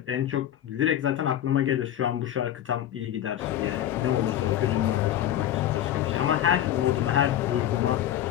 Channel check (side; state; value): right; quieter; 11.7 dB